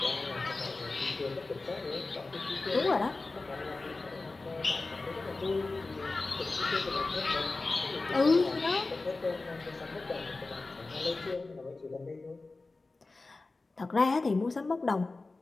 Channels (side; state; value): right; quieter; 3.5 dB